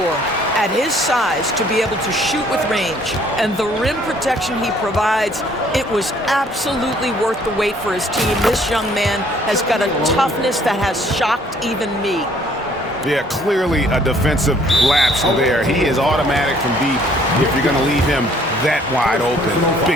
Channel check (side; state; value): both; normal; correlation 0.61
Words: At his size, to be able to shoot with range and the rim protection he provides, it was absolutely worth the wait for his team. This young man has got a toughness that has shocked even me. Yeah, clearly a defensive lapse there. He is automatic from deep if you're going to leave him that wide open.